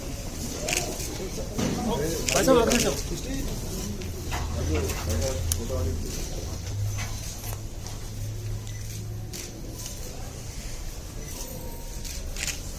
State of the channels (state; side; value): identical; both; correlation 1.00